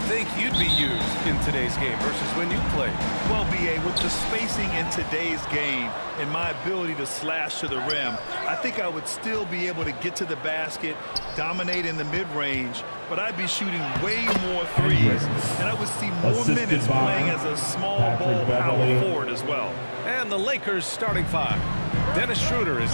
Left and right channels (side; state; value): both; inverted; correlation -1.00